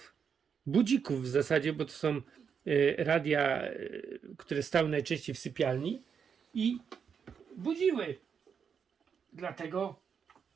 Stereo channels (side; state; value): left; quieter; 6.8 dB